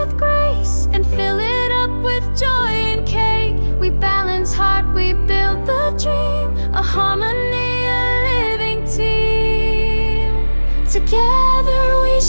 grace and fill it up with joy and cake. We balance heart, we build the dream, a harmony, a living team. Together we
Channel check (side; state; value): both; inverted; correlation -1.00